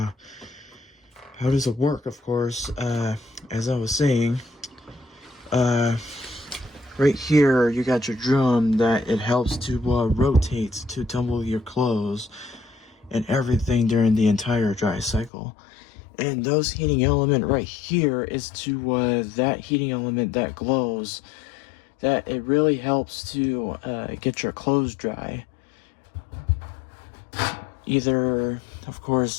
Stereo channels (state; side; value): drops out; right; at 15.3 s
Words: how does it work? Of course, as I was saying, right here you got your drum that it helps to rotate to tumble your clothes and everything during the entire dry cycle. And those heating element right here is to that heating element that glows, that it really helps to get your clothes dry. Either, of